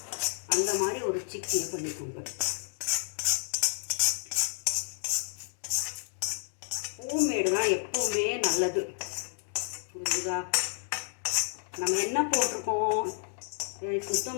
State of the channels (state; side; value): silent; right; digital silence